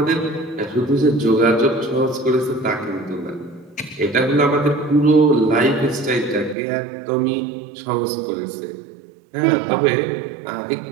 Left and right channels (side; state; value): left; drops out; at 6.6 s